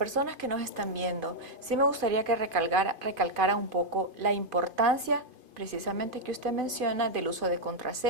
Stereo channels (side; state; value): left; late; 2.5 ms